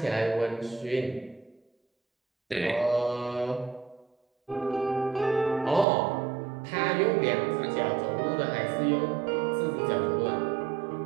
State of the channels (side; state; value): left; drops out; at 5.9 s